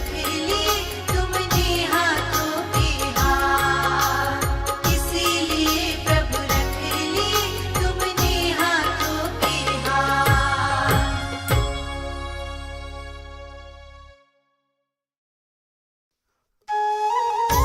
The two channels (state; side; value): identical; both; correlation 1.00